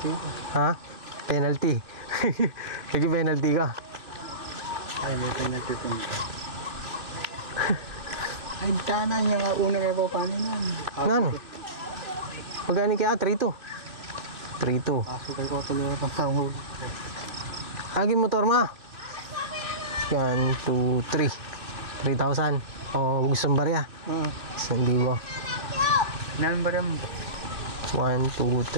Ha? Penalty. Sige, penalty ka. Ay, may penalty po nito. Ay, tana yung una may pa paano nun. Ano? Magkano kaya? 3,200. 3,200. Pasukay ko tuloy ang panghuli. Agi motor ma. Yan, 2, 3. 3,000. O, gusto mong barya? Hindi ba? Ilan ba rin? 1, 2,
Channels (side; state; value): left; late; 2.6 ms